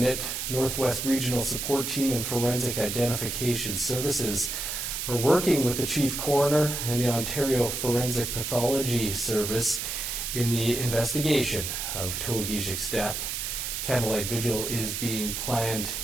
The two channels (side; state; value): right; noise; hiss, 3 dB below the sound